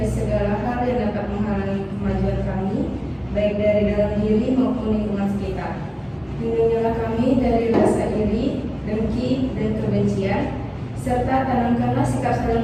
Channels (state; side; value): identical; both; correlation 1.00